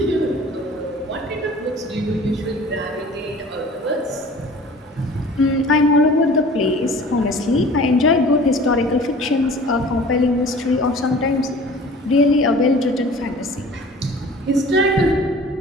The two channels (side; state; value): both; normal; correlation 0.45